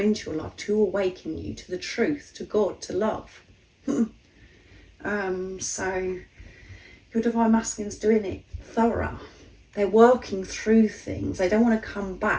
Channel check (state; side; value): identical; both; correlation 1.00